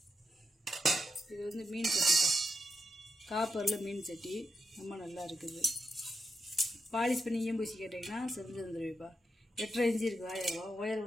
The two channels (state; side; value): normal; both; correlation 0.85